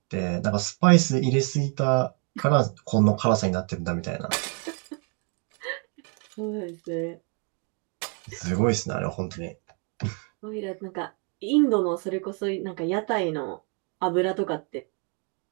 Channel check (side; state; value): left; quieter; 37.8 dB